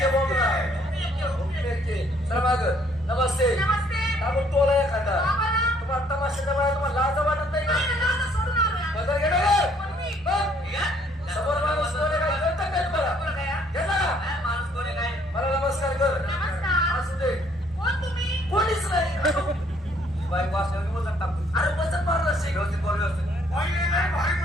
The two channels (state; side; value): normal; both; correlation 0.64